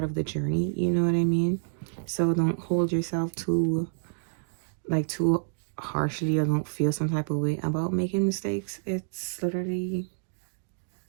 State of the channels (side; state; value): left; silent; digital silence